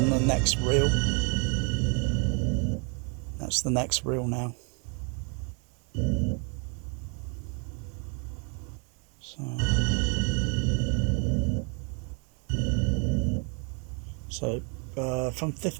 the next reel. That's the next reel now. So from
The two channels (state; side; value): quieter; left; 36.5 dB